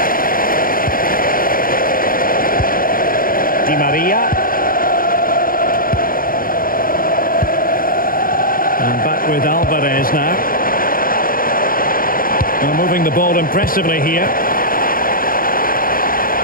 Di Maria. And back with Alvarez now. Well, moving the ball impressively here.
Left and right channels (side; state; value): right; late; 0.41 ms